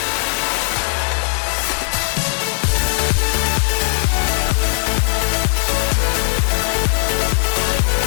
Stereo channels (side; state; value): right; silent; digital silence